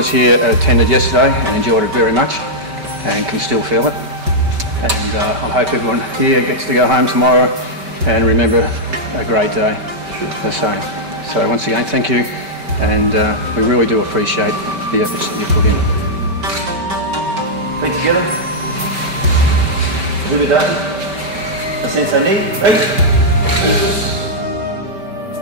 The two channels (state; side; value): late; left; 5.2 ms